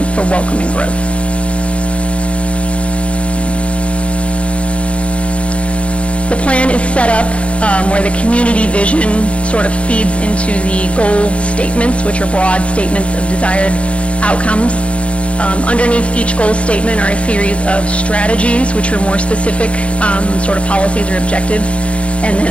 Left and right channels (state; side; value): late; right; 0.061 ms